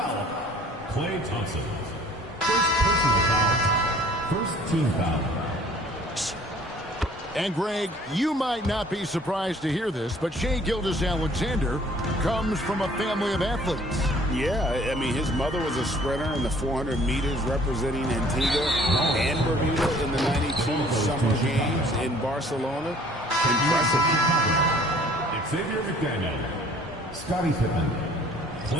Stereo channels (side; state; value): both; normal; correlation 0.55